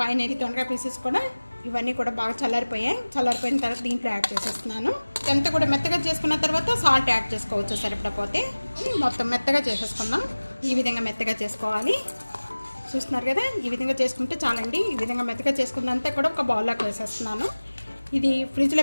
పైన దొండకాయ పీసెస్ కూడా ఇవన్నీ కూడా బాగా చల్లారిపోయిన తర్వాత దీంట్లో యాడ్ చేసేస్తున్నాను. ఎంత కూడా మెత్తగా చేసుకున్న తర్వాత సాల్ట్ యాడ్ చేసుకోవచ్చు సరిపడపోతే. మొత్తం మెత్తగా చేసేసుకుందాం. ఈ విధంగా మెత్తగా చేసుకోవాలి. చూస్తున్నారు కదా, ఈ విధంగా చేసుకుంటే చాలండి. ఈ విధంగా మెత్తగా చేసుకున్నంతా కూడా ఒక బౌల్లోకి వేసేస్తున్నాను. ఇది ఫ్రిడ్జ్లో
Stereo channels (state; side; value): inverted; both; correlation -1.00